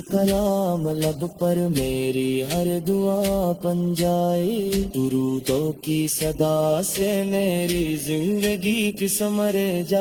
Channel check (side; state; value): both; identical; correlation 1.00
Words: کلام لب پر میری ہر دعا بن جائے، درودوں کی صدا سے میری زندگی کی سمر